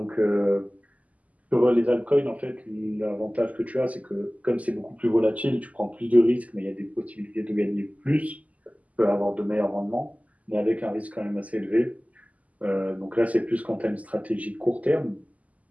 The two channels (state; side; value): late; left; 0.073 ms